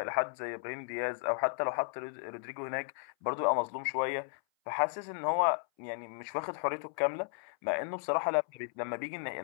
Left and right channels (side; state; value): right; silent; 55 dB below the other